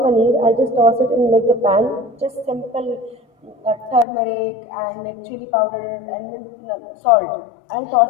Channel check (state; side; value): drops out; right; at 4.0 s